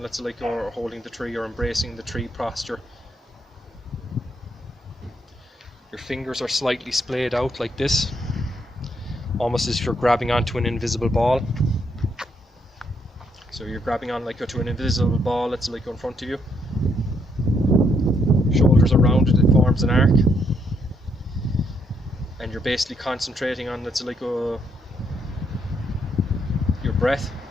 say, like, or holding the tree, or embracing the tree posture. Your fingers are slightly splayed out like this, almost as if you're grabbing onto an invisible ball. So you're grabbing on like to an invisible ball that's like in front of you. Shoulders are rounded, it forms an arc. And you're basically concentrating on, let's say, like your breath,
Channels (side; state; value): both; normal; correlation 0.74